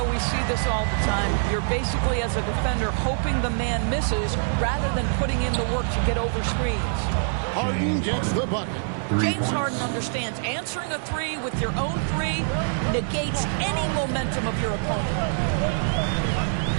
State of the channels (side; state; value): left; silent; digital silence